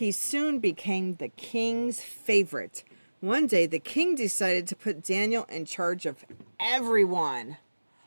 soon became the king's favorite. One day, the king decided to put Daniel in charge of everyone.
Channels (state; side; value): inverted; both; correlation -1.00